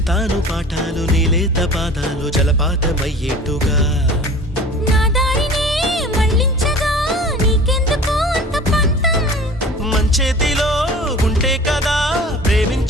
చెబుతాను పాఠాలు నీలేత పాదాలు జలపాతమయ్యేట్టుగా నా దారినే మళ్ళించగా నీకెందుకు అంత పంతం మంచేతిలో ఉంటే కదా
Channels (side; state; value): both; normal; correlation 0.42